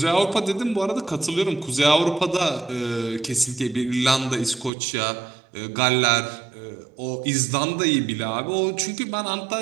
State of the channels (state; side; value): drops out; left; at 4.7 s